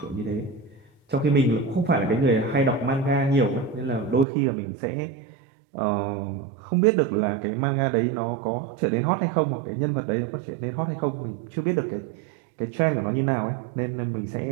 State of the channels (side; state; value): left; drops out; at 4.2 s